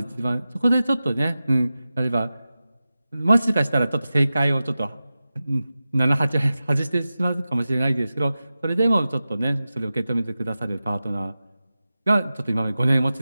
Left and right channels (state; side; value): inverted; both; correlation -0.94